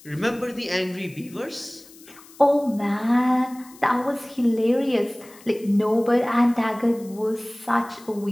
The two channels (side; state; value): left; noise; hiss, 23 dB below the sound